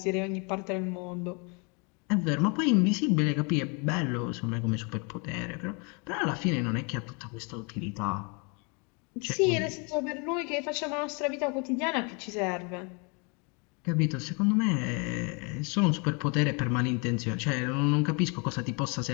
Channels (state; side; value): quieter; right; 33.2 dB